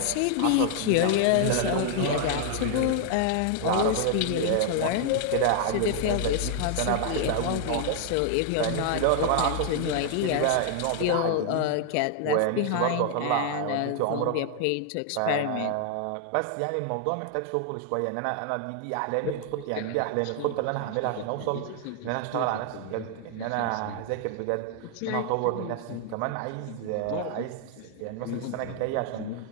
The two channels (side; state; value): both; different; correlation 0.00